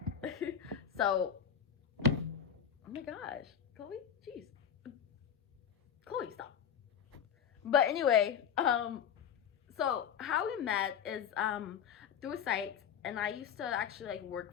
So, oh my gosh, Chloe, jeez. Chloe, stop. But anyway, so how we met is through a site, and I used to actually like work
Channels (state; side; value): quieter; right; 8.1 dB